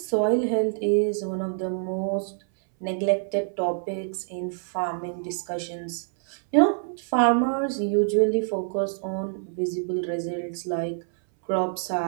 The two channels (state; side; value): silent; left; 61 dB below the other